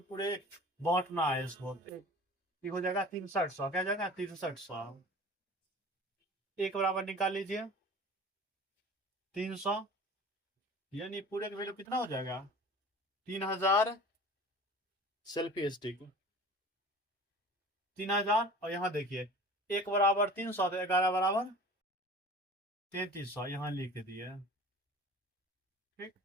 पूरे बांटना है इसको। ये हो जाएगा 6300, क्या जाएगा 6300। एक बराबर निकाल लीजिए 300, यानी पूरे का वैल्यू कितना हो जाएगा, 3000 सेल्फी स्टिक 3000। और यहाँ देखिए एक बराबर 300 तो 11 बराबर 3300 यहाँ लिख दिए। ठीक,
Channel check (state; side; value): normal; both; correlation 0.41